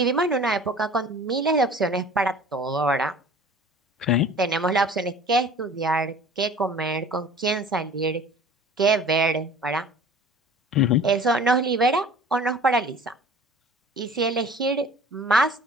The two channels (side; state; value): both; normal; correlation 0.45